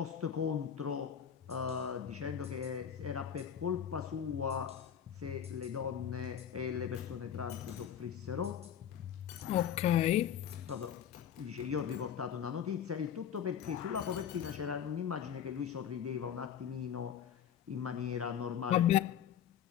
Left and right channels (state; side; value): quieter; right; 8.8 dB